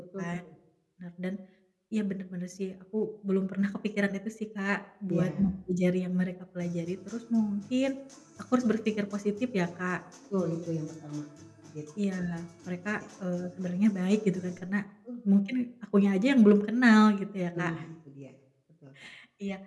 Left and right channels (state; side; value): identical; both; correlation 1.00